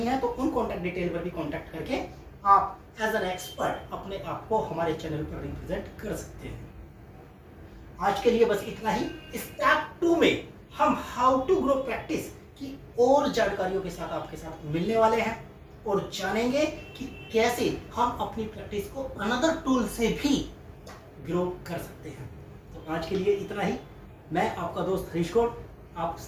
हैं, तो उन कांटेक्ट डिटेल पर भी कांटेक्ट करके आप एज एन एक्सपर्ट अपने आप को हमारे चैनल पर रिप्रेजेंट कर सकते हैं। आज के लिए बस इतना ही। स्टेप 2 में हम हाउ टू ग्रो प्रैक्टिस की और जानकारियों के साथ आपके साथ मिलने वाले हैं और जानेंगे कि कैसे हम अपनी प्रैक्टिस को अनदर टूल से भी ग्रो कर सकते हैं। तो आज के लिए इतना ही। मैं आपका दोस्त हरीश गौड़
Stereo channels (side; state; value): both; identical; correlation 1.00